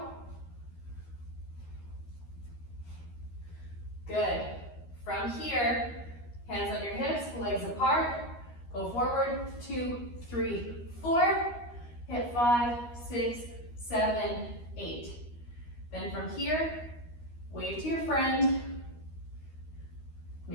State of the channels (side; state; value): right; late; 13 ms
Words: Good. From here, hands on your hips, legs apart. Go forward, 2, 3, 4. Hit 5, 6, 7, 8. Then from here, wave to your friend.